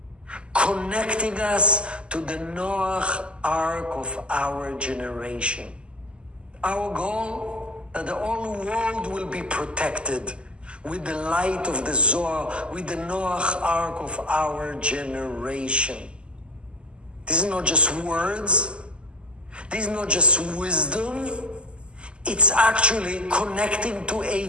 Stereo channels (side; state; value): left; late; 0.052 ms